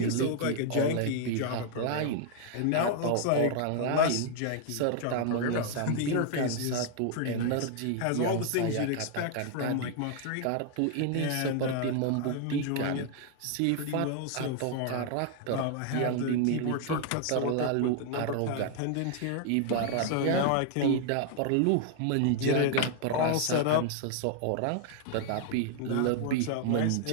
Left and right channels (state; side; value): different; both; correlation 0.00